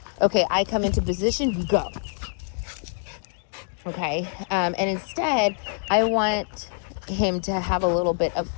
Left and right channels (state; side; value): silent; right; 62 dB below the other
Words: okay, I come into position, you go. Okay. And instead, I want him to have a little bit of